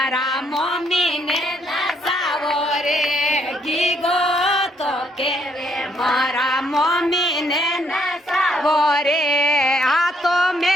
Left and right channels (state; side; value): normal; both; correlation 0.70